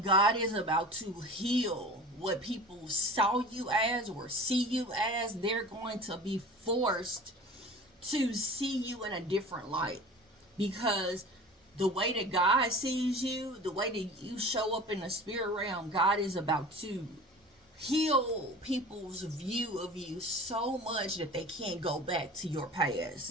God is about to heal what people saw you as or see you as. They're going to be forced to see you in a different light, because the way that God sees you, the way that you show up in the spirit realm, God is about to heal people's view of you so much that they can't go back to your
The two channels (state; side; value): normal; both; correlation 0.39